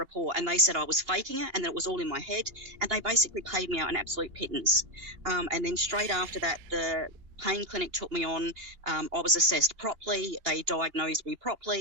And they said I was faking it and that it was all in my head, and they basically paid me out an absolute pittance. And then straight after that, the pain clinic took me on. I was assessed properly. They diagnosed me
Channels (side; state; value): left; late; 2.8 ms